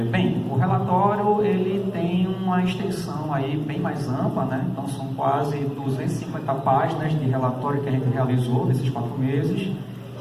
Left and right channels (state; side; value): identical; both; correlation 1.00